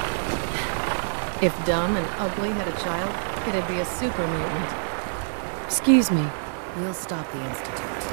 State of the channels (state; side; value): silent; left; digital silence